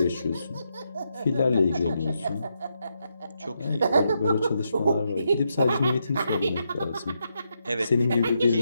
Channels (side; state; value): both; inverted; correlation -0.81